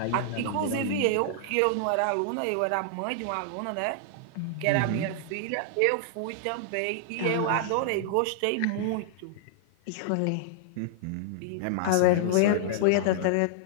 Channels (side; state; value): both; different; correlation -0.01